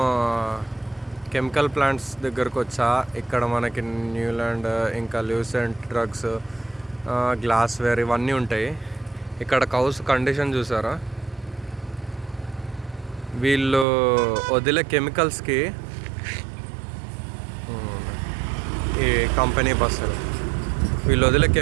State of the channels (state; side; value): drops out; left; at 13.9 s